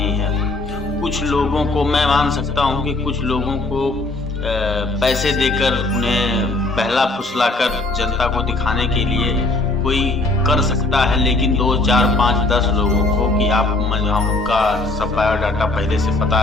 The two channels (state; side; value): quieter; right; 3.1 dB